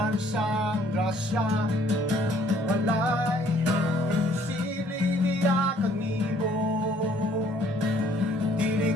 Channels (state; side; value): normal; both; correlation 0.61